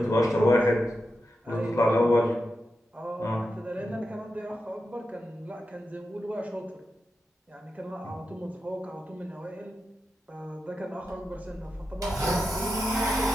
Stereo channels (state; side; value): normal; both; correlation 0.89